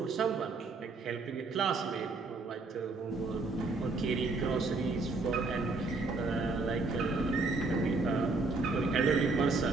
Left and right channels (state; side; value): quieter; left; 3.7 dB